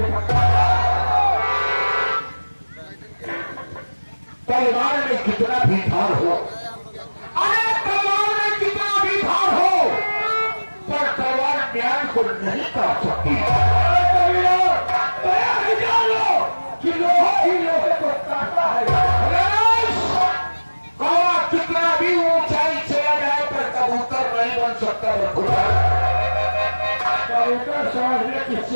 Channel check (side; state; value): both; inverted; correlation -1.00